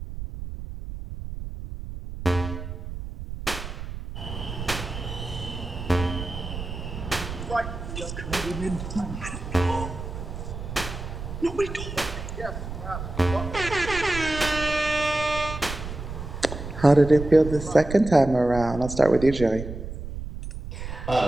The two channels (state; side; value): noise; right; rumble, 8 dB below the sound